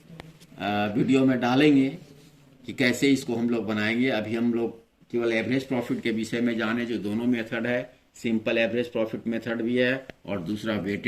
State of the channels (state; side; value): identical; both; correlation 1.00